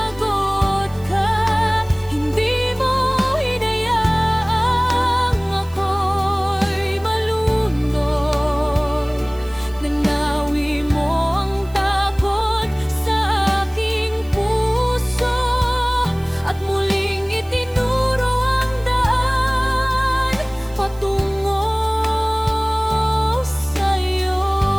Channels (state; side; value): noise; right; hiss, 24 dB below the sound